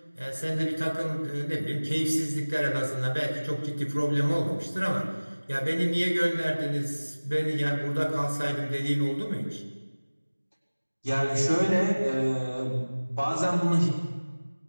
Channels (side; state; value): both; inverted; correlation -1.00